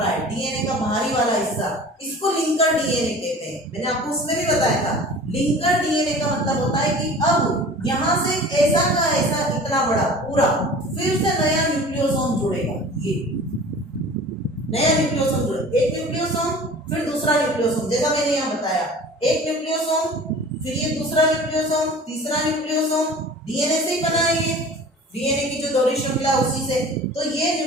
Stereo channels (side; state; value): both; normal; correlation 0.42